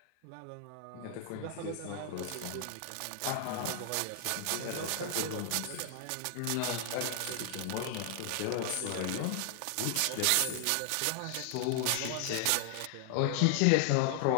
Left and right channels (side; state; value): both; different; correlation 0.00